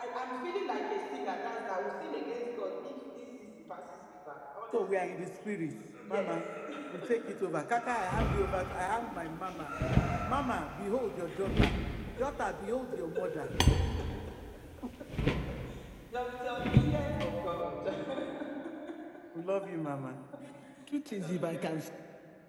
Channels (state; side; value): identical; both; correlation 1.00